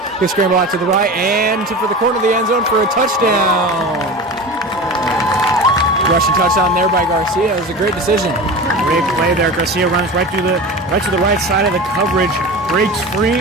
He'll scramble out to the right and for the corner of the end zone for a touchdown. Rushing touchdown there by Garcia. It was a great decision. Great play there. Garcia runs right to the right side of the coverage. Breaks free.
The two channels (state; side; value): normal; both; correlation 0.30